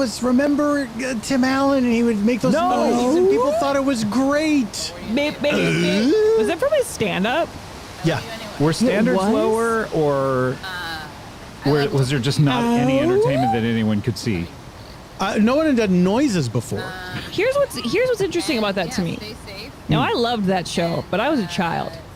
remember Tim Allen, and he would make those noises, and people thought it was great. Beep, beep, beep. Was that from his stand-up? Yeah. Were standards was? lower, or was there just not any entertainment that anyone could see? No one had done noises before. Here's what's interesting about that to me. Now, I loved that show, but I was a child.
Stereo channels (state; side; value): identical; both; correlation 1.00